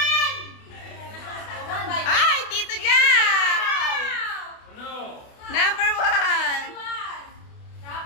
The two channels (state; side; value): late; right; 28 ms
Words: 1! Ay, Tito Jack! Ano? Number 1!